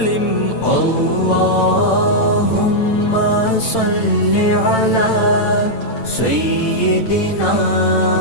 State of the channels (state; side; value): late; right; 8.9 ms